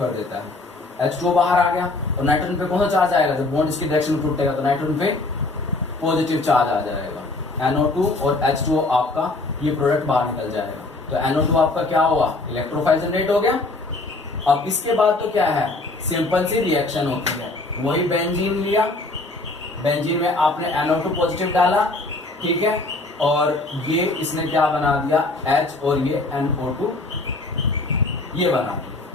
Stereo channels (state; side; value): quieter; right; 3.1 dB